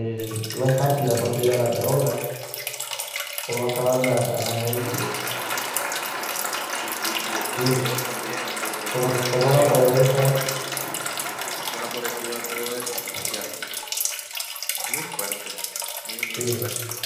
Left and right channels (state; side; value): identical; both; correlation 1.00